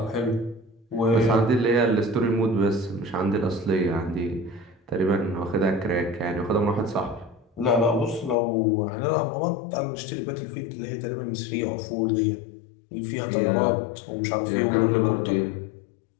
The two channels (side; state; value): right; drops out; at 8.3 s